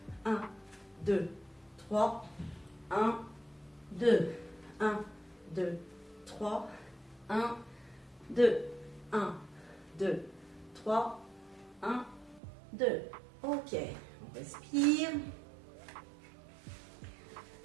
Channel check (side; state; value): left; drops out; at 12.4 s